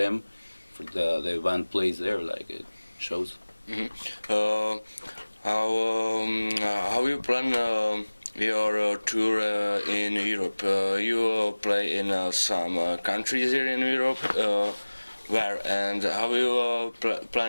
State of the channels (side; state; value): both; inverted; correlation -1.00